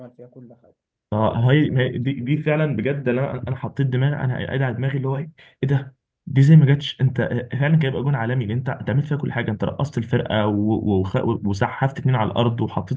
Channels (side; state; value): both; identical; correlation 1.00